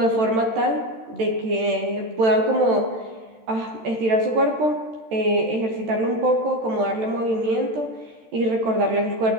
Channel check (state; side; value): late; left; 13 ms